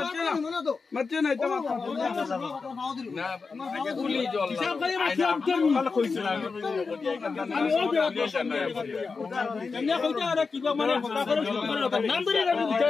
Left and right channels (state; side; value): quieter; right; 4.6 dB